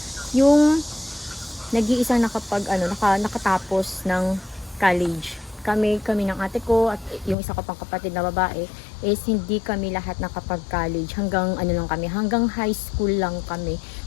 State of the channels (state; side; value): drops out; right; at 7.4 s